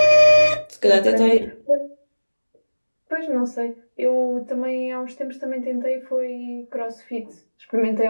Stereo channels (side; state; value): both; inverted; correlation -1.00